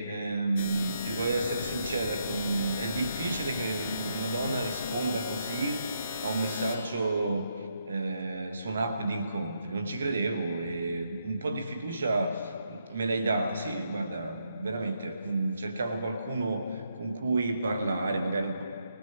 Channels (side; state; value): both; inverted; correlation -0.78